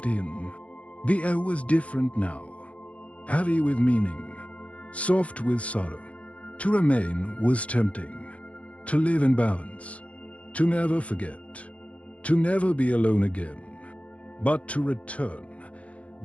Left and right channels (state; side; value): late; right; 0.064 ms